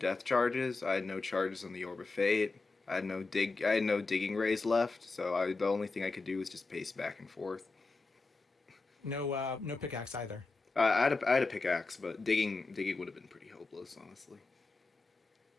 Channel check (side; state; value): right; quieter; 3.8 dB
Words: charges. I had no charges on the Orb of Fate. I had no digging rays left. So the only thing I could do was just pace back and forth. No pickaxe either. I had a pickaxe, but digging would have been pretty hopeless, honestly.